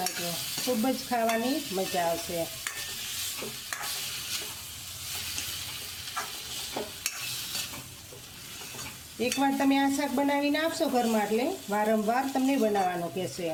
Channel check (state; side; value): identical; both; correlation 1.00